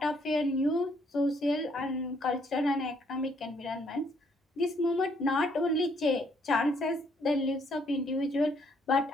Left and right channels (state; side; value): normal; both; correlation 0.68